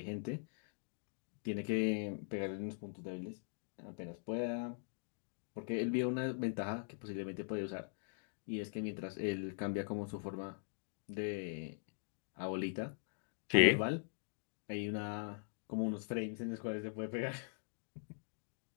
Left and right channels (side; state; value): right; silent; digital silence